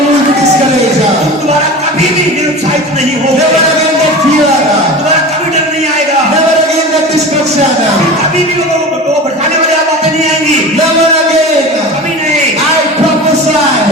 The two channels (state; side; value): normal; both; correlation 0.32